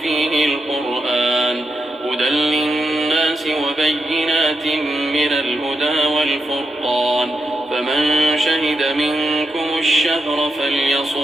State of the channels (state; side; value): normal; both; correlation 0.85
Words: فيه القرآن هدى للناس وبينات من الهدى والفرقان فمن شهد منكم الشهر